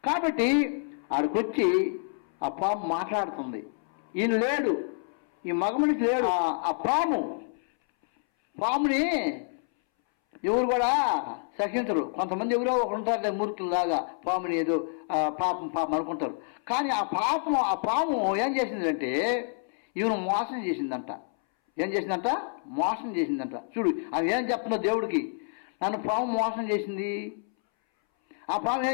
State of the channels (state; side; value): silent; right; 59 dB below the other